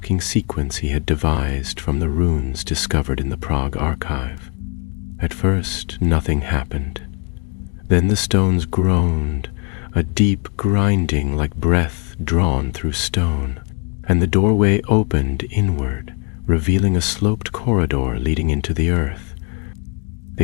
sequence he had devised from the runes discovered in the Prague archive. At first, nothing happened. Then the stones groaned, a deep grinding like breath drawn through stone, and the doorway opened inward, revealing a sloped corridor leading into the earth.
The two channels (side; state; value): right; quieter; 35.5 dB